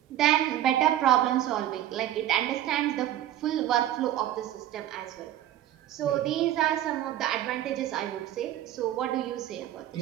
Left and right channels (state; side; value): quieter; left; 12.6 dB